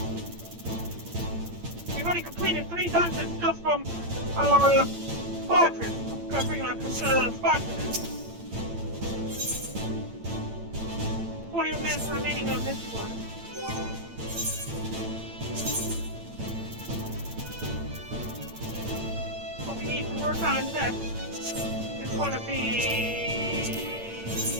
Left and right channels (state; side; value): late; left; 8.8 ms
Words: We've already completed 3 dungeons just from our squadron. Covering our squadron. 40 minutes remaining on this one. What we need to work on next is going to be